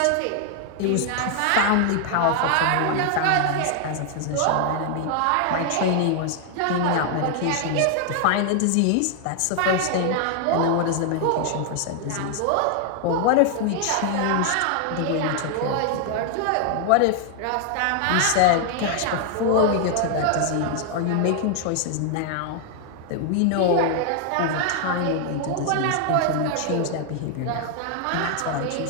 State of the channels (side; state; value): both; different; correlation 0.00